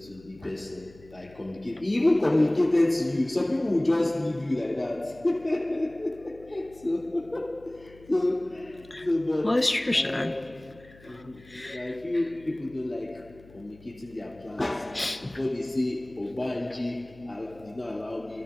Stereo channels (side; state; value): left; noise; hum, 23 dB below the sound